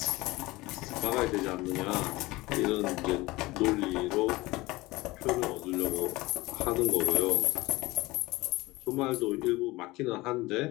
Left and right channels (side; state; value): right; quieter; 20.7 dB